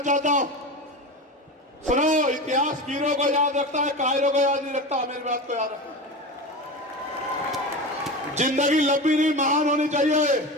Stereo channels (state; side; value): normal; both; correlation 0.26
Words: चाहता हूं, सुनो, इतिहास वीरों को याद रखता है, कायरों को याद नहीं रखता। मेरी बात को याद रखना। जिंदगी लंबी नहीं, महान होनी चाहिए।